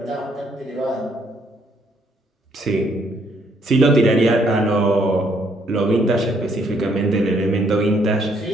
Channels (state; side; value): normal; both; correlation 0.69